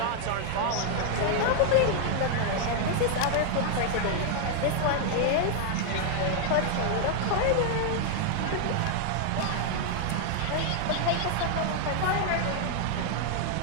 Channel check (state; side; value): different; both; correlation 0.00